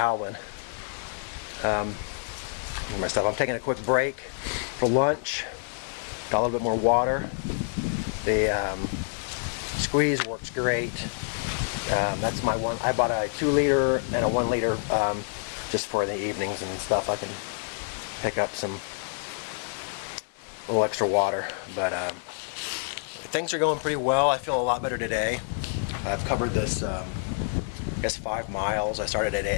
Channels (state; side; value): silent; right; digital silence